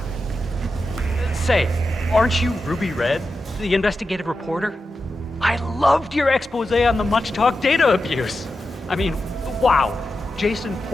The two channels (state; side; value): normal; both; correlation 0.90